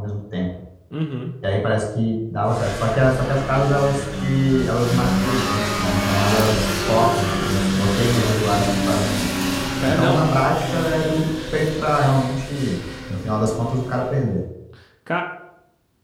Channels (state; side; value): identical; both; correlation 1.00